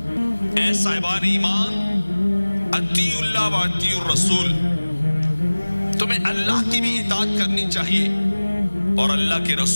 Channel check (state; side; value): inverted; both; correlation -1.00